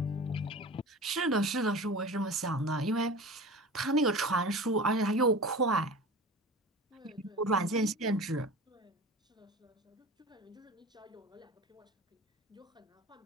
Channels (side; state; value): both; normal; correlation 0.36